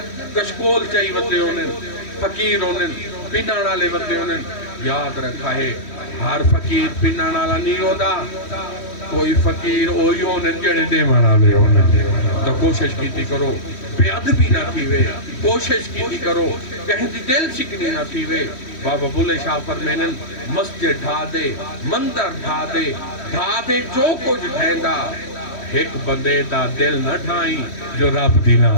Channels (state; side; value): late; right; 3.1 ms